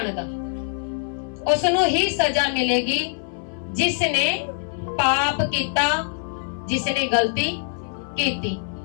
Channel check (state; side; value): silent; right; 60 dB below the other